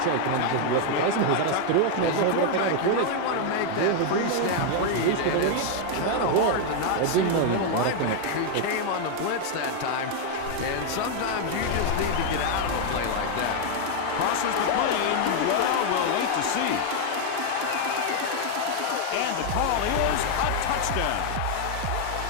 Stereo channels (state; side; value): different; both; correlation 0.00